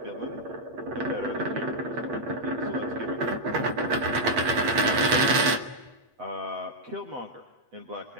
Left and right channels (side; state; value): left; late; 8.0 ms